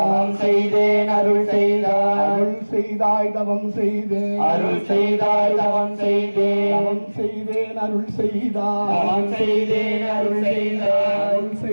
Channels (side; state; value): both; inverted; correlation -1.00